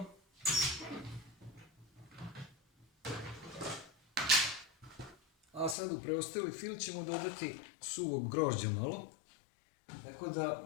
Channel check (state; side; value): drops out; right; at 5.8 s